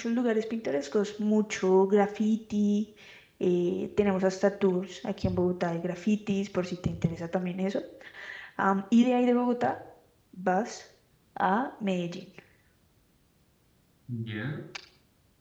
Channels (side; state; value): both; identical; correlation 1.00